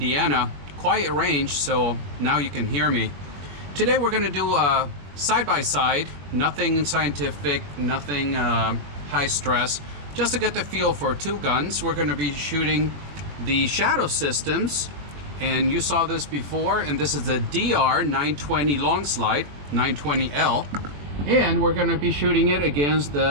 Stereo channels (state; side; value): late; left; 21 ms